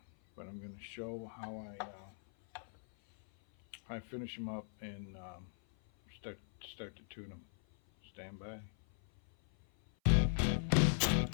But I'm going to show how I finish them up and start to tune them. Stand by.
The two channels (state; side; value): silent; right; 52 dB below the other